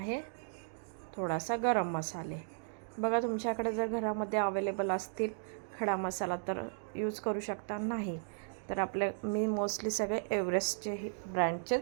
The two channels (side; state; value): left; silent; digital silence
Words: थोडासा गरम मसाले. बघा, तुमच्याकडे जर घरामध्ये अवेलेबल असतील खडा मसाला तर यूज करू शकता, नाही तर मी मोस्टली सगळे एव्हरेस्टचे